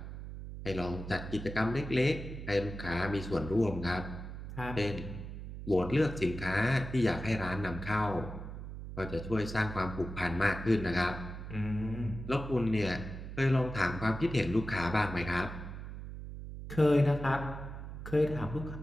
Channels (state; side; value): noise; right; hum, 9 dB below the sound